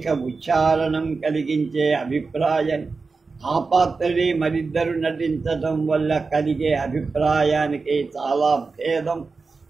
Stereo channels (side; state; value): left; quieter; 4.3 dB